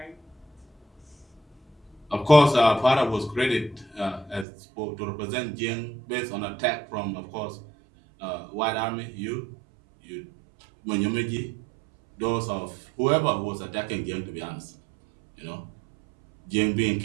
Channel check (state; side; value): drops out; left; at 4.5 s